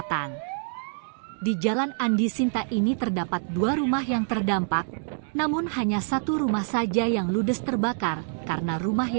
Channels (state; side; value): silent; left; digital silence